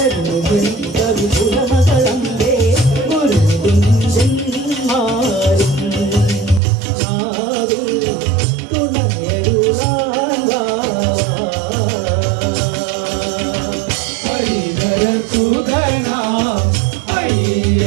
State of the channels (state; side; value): drops out; left; at 6.6 s